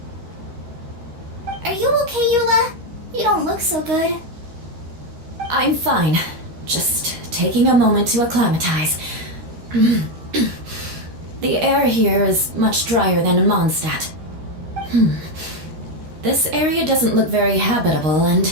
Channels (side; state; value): left; late; 13 ms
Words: Are you okay, Eula? You don't look so good. I'm fine. Just taking a moment to acclimatize. The air here is much drier than in Mondstadt. This area doesn't look very habitable,